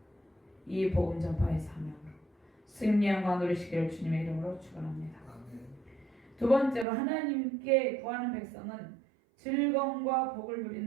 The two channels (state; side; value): drops out; left; at 6.9 s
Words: 이 복음 전파의 사명으로 승리 영광 누리시기를 주님의 이름으로 축원합니다. 두 번째로 하나님께 구하는 백성은 즐거움과 복을